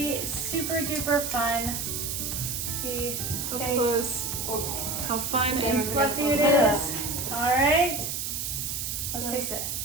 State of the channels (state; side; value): noise; right; hiss, 3 dB below the sound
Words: super duper fun. See up Okay. close how fun Okay, and we're fluffy gonna it open it is. All right. Let's taste it.